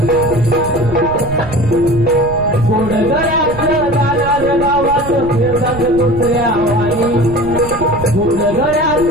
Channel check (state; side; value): noise; right; rumble, 12 dB below the sound